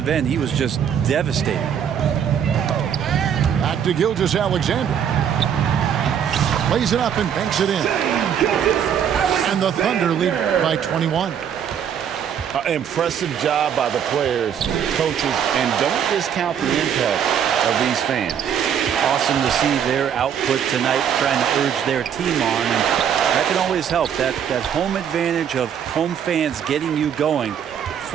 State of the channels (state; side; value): quieter; left; 8.5 dB